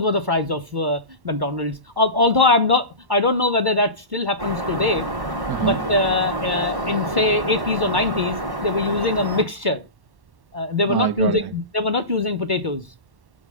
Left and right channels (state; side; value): late; left; 1.1 ms